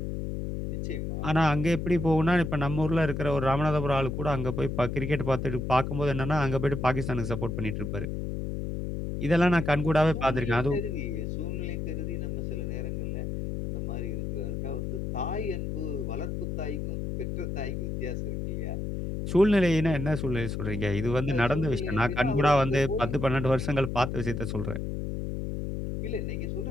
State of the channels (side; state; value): left; noise; hum, 3 dB below the sound